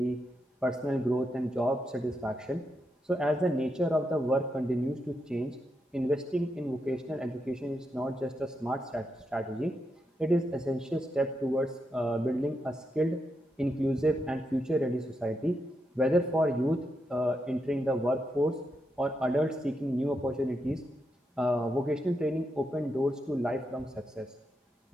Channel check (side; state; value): both; normal; correlation 0.84